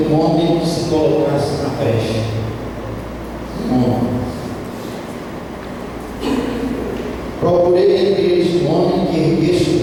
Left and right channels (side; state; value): both; identical; correlation 1.00